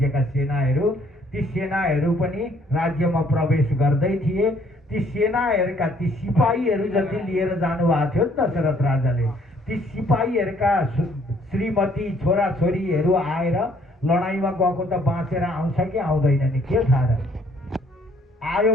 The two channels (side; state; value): both; normal; correlation 0.63